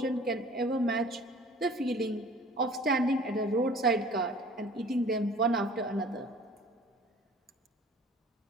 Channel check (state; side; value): normal; both; correlation 0.48